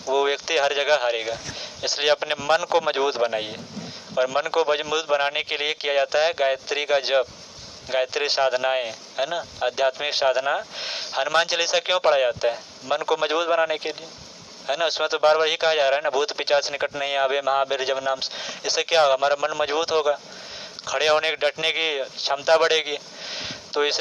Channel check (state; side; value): identical; both; correlation 1.00